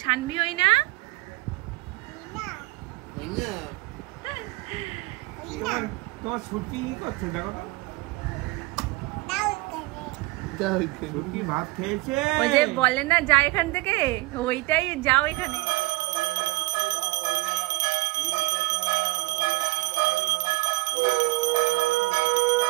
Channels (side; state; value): left; quieter; 22.4 dB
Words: শানভি হই না? তোমার ছুটি করছো দেখো তো, ছুটি ভাত খেয়েছে। ওই যে বলে না যা এখান থেকে, ওইটাই যাও এখানে।